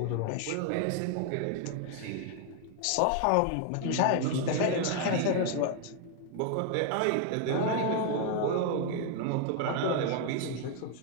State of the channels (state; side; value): different; both; correlation 0.00